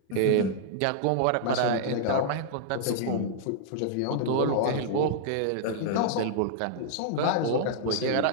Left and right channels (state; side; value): different; both; correlation -0.01